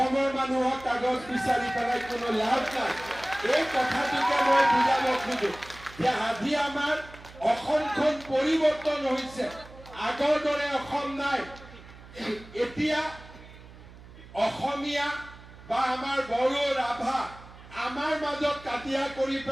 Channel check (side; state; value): right; noise; hum, 19 dB below the sound